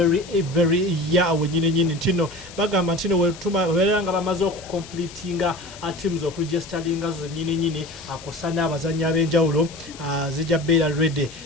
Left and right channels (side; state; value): left; noise; hiss, 17 dB below the sound